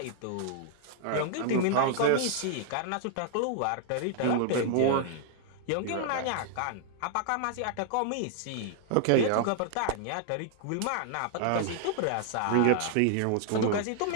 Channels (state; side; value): different; both; correlation 0.00